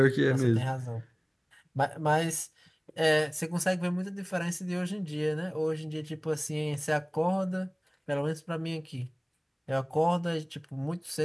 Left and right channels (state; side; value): identical; both; correlation 1.00